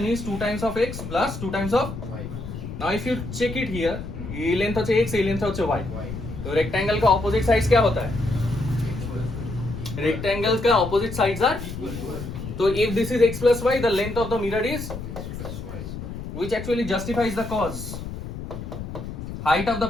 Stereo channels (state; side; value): noise; left; rumble, 8 dB below the sound